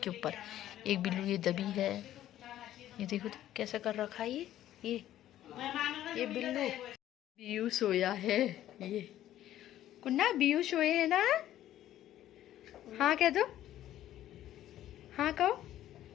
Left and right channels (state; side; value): quieter; right; 12.8 dB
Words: ऊपर। एक बिल्लू ये दबी है, ये देखो तो कैसा कर रखा है ये बिल्लू। बियू सोया है, ये कुन्ना बियू सोए है ना, हाँ कह दो, हाँ कहो।